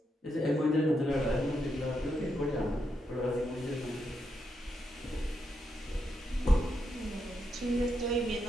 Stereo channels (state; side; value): normal; both; correlation 0.82